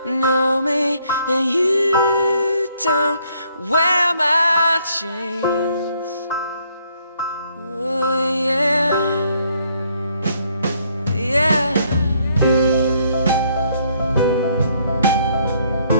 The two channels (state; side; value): inverted; both; correlation -0.69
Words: know me and you don't wear my chains. Oh yeah, yeah.